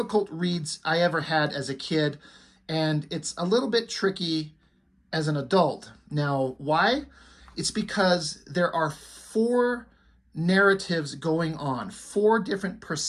reads I ever had as a kid, and it's a little bit tricky as an adult. Now, why? It's because there are 4 narratives going on, 4 different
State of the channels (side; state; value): both; identical; correlation 1.00